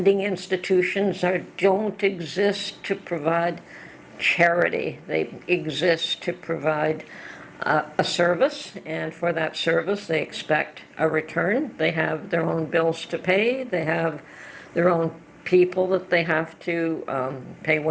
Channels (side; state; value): both; identical; correlation 1.00